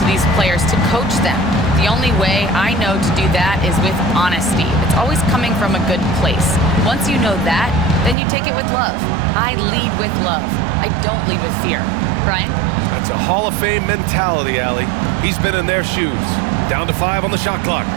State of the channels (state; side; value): drops out; left; at 8.2 s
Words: these players to coach them. The only way I know to do that is with honesty. It's always coming from a good place. Once you know that, then you take it with love. I lead with love. I don't lead with fear. Brian? That's a Hall of Fame mentality, Allie. He's been in their shoes. Down to 5 on the shot clock.